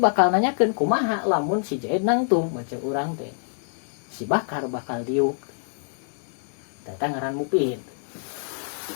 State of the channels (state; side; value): silent; right; digital silence